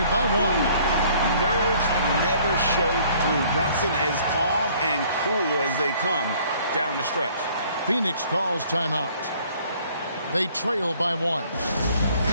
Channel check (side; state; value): both; inverted; correlation -0.58